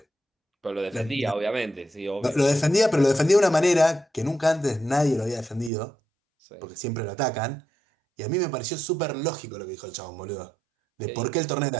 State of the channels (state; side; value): drops out; left; at 5.7 s